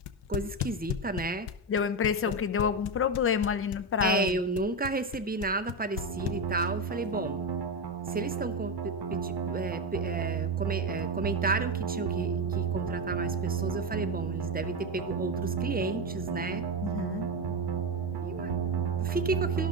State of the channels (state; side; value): normal; both; correlation 0.13